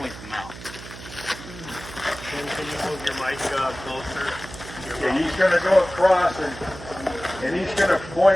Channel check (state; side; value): noise; right; hum, 14 dB below the sound